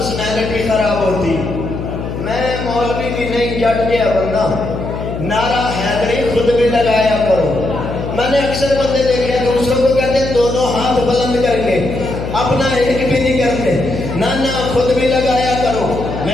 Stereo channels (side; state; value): left; noise; hum, 6 dB below the sound